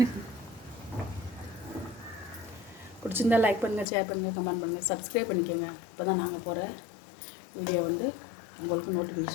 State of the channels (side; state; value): right; drops out; at 3.9 s